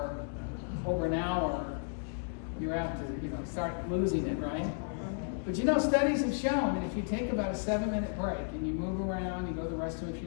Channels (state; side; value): silent; right; digital silence